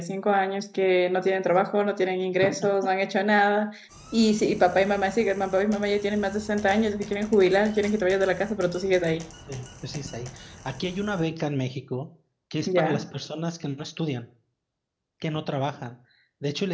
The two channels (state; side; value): identical; both; correlation 1.00